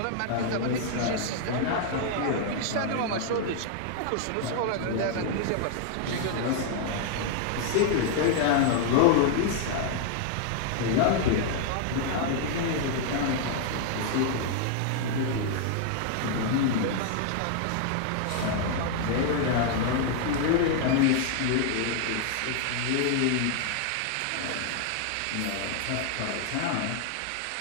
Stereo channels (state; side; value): different; both; correlation 0.00